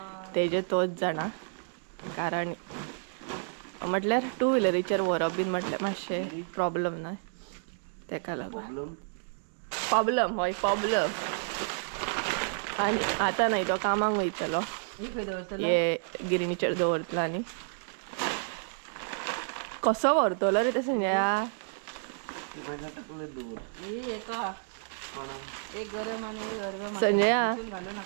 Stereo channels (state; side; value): silent; left; digital silence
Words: तेजे तोच जाणा कारण म्हटल्यार 2 व्हिलरीचेर व्हरप बीन म्हटल्यार मातशें प्रॉब्लम न्हय तेका लागून प्रॉब्लम हय प्रॉब्लम आणि आता नाही तो कामाक वयतलो हे गिरणीचेर दवरतलो आनी कसो व्हरतलो रे ते संजया संजया